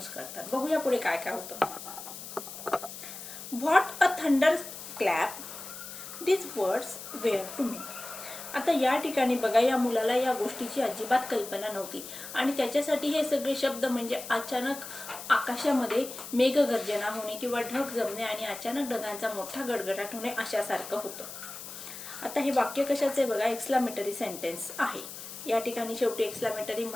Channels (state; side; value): noise; left; hiss, 11 dB below the sound